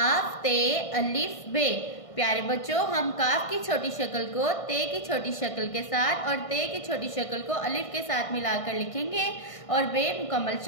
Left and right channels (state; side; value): late; right; 1.6 ms